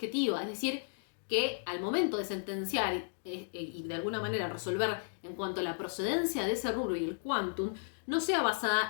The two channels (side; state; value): right; silent; digital silence